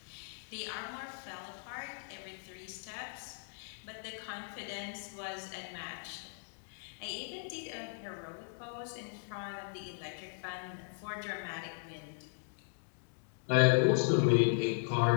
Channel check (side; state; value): right; silent; digital silence